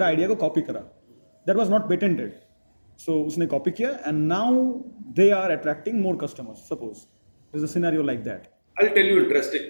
आइडिया को कॉपी करा that was not patented so उसने कॉपी किया and now they are attracting more customers suppose there is a scenario like that I'll tell you interesting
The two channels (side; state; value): both; inverted; correlation -1.00